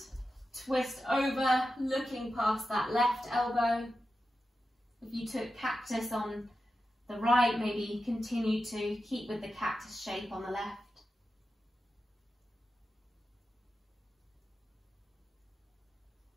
Twist over, looking past that left elbow. If you took cactus on the right, maybe continue to keep with the cactus shape on the left.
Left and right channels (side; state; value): both; normal; correlation 0.91